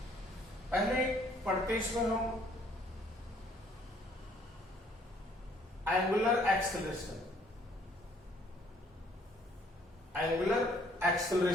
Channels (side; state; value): both; normal; correlation 0.62